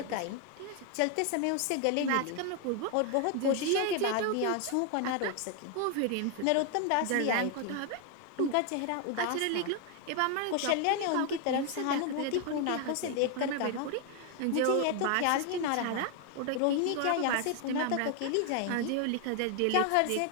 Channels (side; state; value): both; different; correlation 0.01